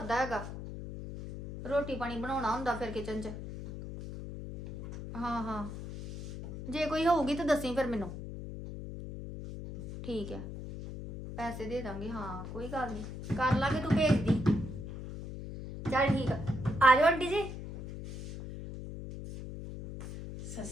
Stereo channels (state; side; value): noise; left; hum, 9 dB below the sound